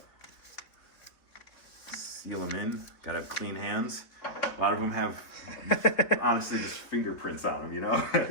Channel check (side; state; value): right; late; 3.9 ms